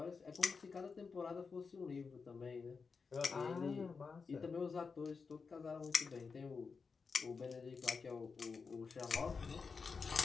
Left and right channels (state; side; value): quieter; right; 5.1 dB